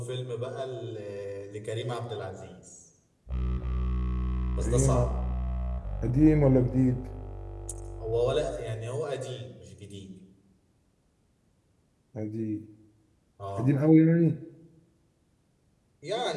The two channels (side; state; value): both; identical; correlation 1.00